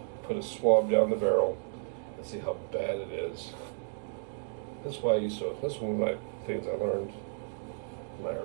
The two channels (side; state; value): left; silent; digital silence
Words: put a swab down the barrel and see how bad it is. That's why this is one of my things I learned in my